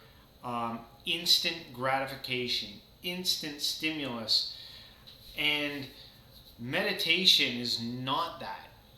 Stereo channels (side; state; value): both; identical; correlation 1.00